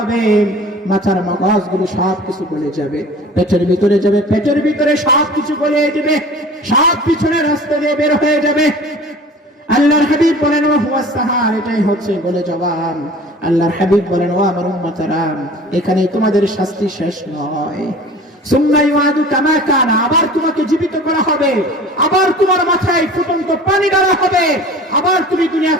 মাথার মগজগুলো সব কিছু গলে যাবে, পেটের ভিতরে যাবে, পেটের ভিতরে সব কিছু গলিয়ে দিবে, সব পিছনের রাস্তা দিয়ে বের হয়ে যাবে। আল্লাহর হাবিব বলেন, ওয়া হুয়া সাহার, এটাই হচ্ছে গলে যাওয়া। আল্লাহর হাবিব বলেন, ও আমার উম্মতরা, এখানে তোমাদের শাস্তি শেষ নয়। সুম্মা ইউআদু কামা কানা, আবার তোমাকে জীবিত করা হবে, আবার তোমার মাথায় ফুটন্ত পানি ঢালা হবে, আবার তুমি দুনিয়া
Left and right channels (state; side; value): normal; both; correlation 0.43